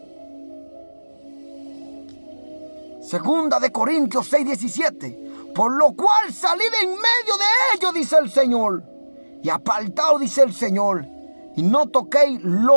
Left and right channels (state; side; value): inverted; both; correlation -1.00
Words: Segunda de Corintios 6:17. Por lo cual salid en medio de ellos, dice el Señor, y apartaos, dice el Señor, y no toquéis